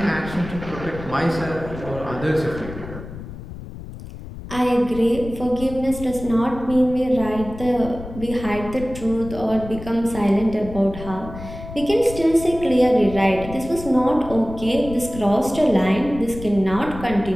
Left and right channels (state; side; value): noise; left; rumble, 12 dB below the sound